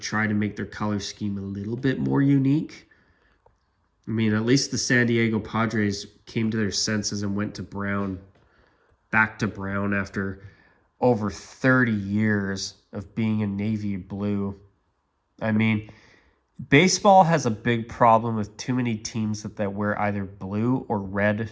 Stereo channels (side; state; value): both; identical; correlation 1.00